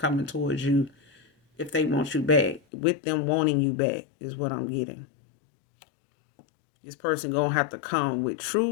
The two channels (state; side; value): drops out; right; at 2.6 s